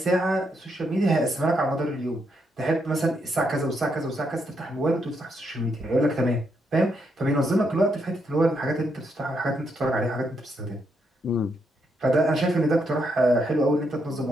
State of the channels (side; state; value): both; normal; correlation 0.78